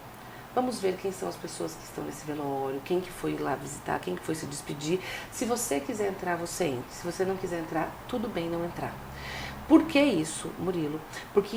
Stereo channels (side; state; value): both; identical; correlation 1.00